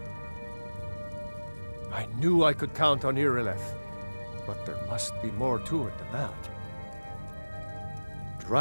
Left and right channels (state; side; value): inverted; both; correlation -1.00